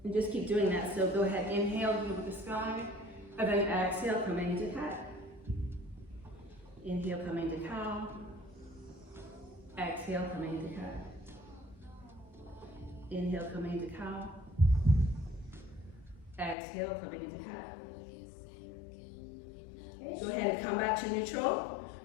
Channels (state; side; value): drops out; right; at 16.6 s